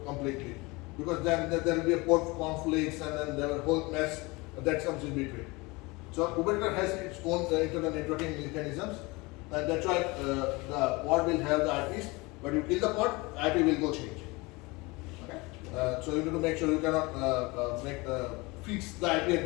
completely, because then there will be a port conflicts, and then there will be a whole mess that comes in between. So Kubernetes has its own internal networking mechanisms, and that's why the pod will have the IPs. But you kill the pod, IP will go change. Okay, so you need to make sure you cannot fix the IP at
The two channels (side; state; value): right; quieter; 24.6 dB